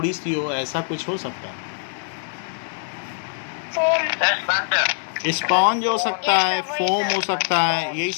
सी हो, ऐसा कुछ हो सकता है। स्पॉन्ज हो सकता है, फोम हो सकता है, यही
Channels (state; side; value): silent; right; digital silence